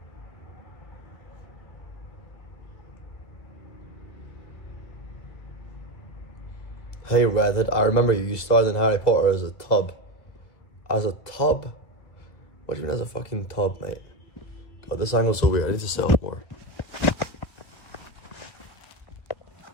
Hey Redhead, I remember you starred in Harry Potter as a tub. As a tub? What do you mean as a fucking tub, mate? God, this angle's so weird. I need to sit up more.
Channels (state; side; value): late; right; 1.7 ms